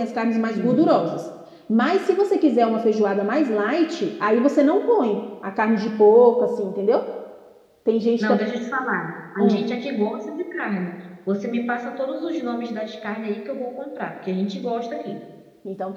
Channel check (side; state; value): both; identical; correlation 1.00